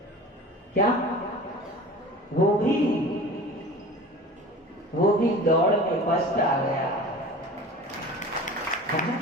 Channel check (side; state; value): both; normal; correlation 0.38